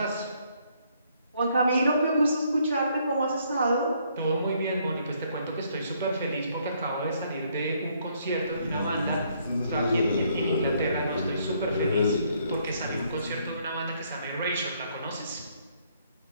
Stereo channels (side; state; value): both; inverted; correlation -0.69